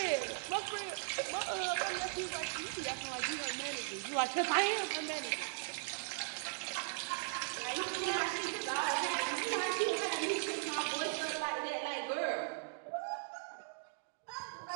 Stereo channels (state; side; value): silent; left; digital silence